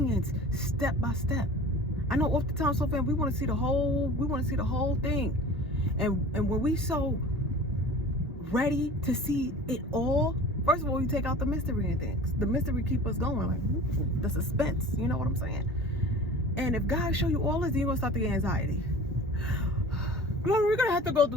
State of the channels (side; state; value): both; normal; correlation 0.40